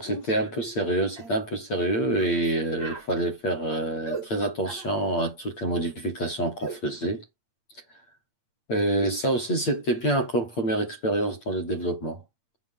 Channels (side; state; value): right; late; 8.7 ms